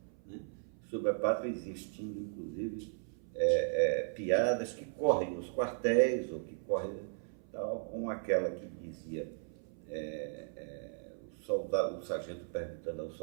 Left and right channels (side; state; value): left; silent; 53 dB below the other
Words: né? Sobre a pátria existindo, inclusive, piadas que correm nos quartéis, ou que correm tal, como aquela que dizia o sargento perguntando ao